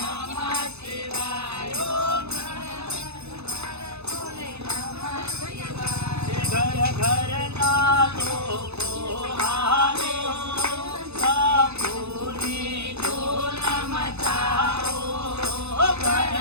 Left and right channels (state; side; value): late; left; 0.80 ms